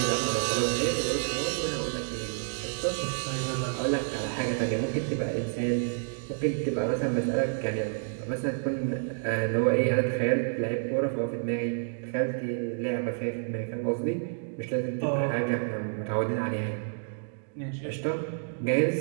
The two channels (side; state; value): left; silent; digital silence